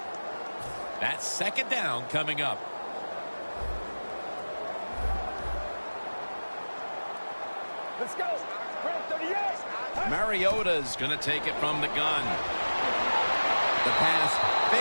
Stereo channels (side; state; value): both; inverted; correlation -1.00